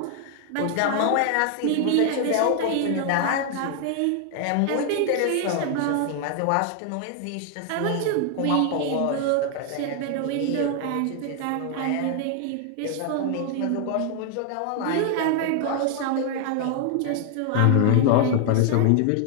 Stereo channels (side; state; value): both; different; correlation 0.00